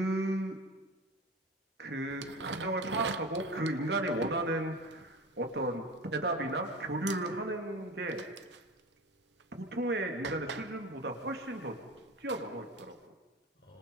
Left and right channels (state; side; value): normal; both; correlation 0.31